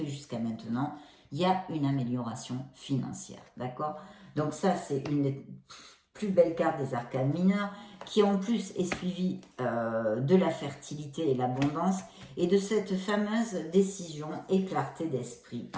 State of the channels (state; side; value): identical; both; correlation 1.00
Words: jusqu'à maintenant, il y a une amélioration financière, d'accord? Donc ça, c'est une des plus belles cartes des arcanes mineurs, qui en plus est suivie de la fertilité et l'abondance, et de cette fameuse décision et clarté d'esprit.